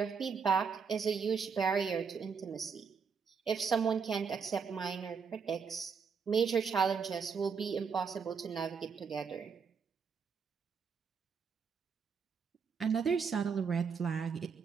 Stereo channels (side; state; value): left; quieter; 5.9 dB